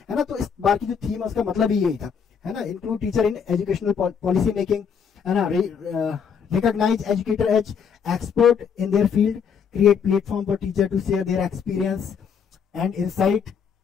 है ना। तो इस बार की जो थीम है उसका मतलब ही यही था, है ना। Include teacher in educational policy making, है ना। Recognise educator as expert in their field, create platform for teacher to share their experience and insight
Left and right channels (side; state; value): right; quieter; 6.9 dB